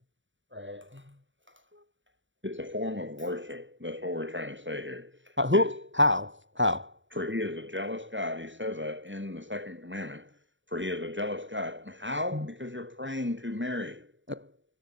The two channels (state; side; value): late; left; 0.55 ms